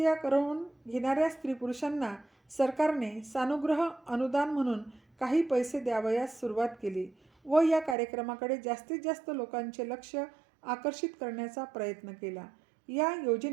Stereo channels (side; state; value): left; drops out; at 8.0 s